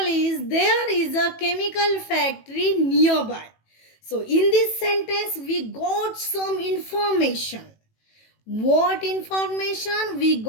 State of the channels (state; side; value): late; right; 18 ms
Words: there is a chemical factory nearby. So in this sentence we got some information. What information? We